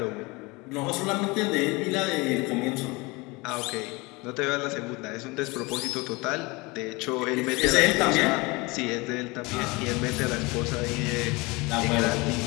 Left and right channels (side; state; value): right; quieter; 25.0 dB